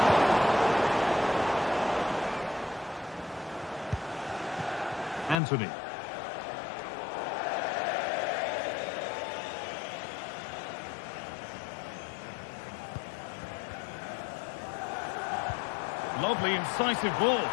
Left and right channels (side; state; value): right; drops out; at 5.4 s